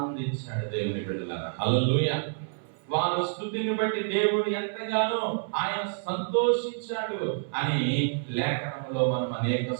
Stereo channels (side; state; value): left; silent; 59 dB below the other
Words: దేవుని బిడ్డలారా, హల్లెలూయా. వారి స్తుతిని బట్టి దేవుడు ఎంతగానో ఆయన సంతోషించాడు అని లేఖనంలో మనం అనేక